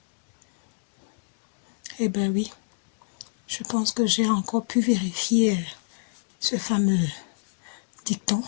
Eh bien oui, je pense que j'ai encore pu vérifier ce fameux dicton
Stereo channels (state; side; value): silent; right; digital silence